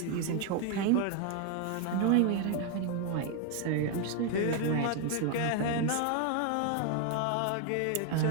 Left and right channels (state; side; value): different; both; correlation 0.01